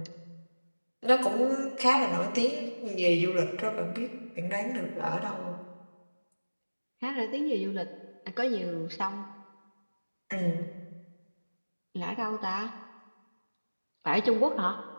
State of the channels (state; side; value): inverted; both; correlation -1.00